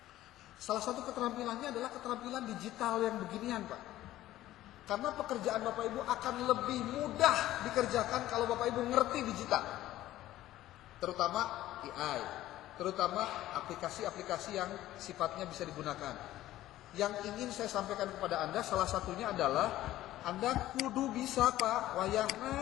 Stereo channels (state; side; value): quieter; right; 14.6 dB